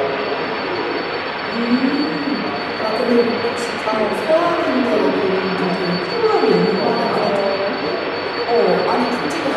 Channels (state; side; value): identical; both; correlation 1.00